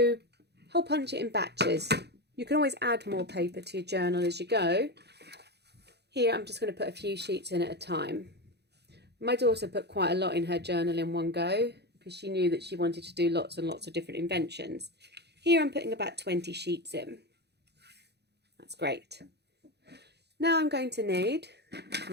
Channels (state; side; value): late; left; 0.48 ms